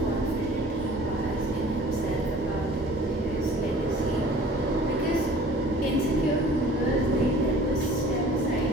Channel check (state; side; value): normal; both; correlation 0.48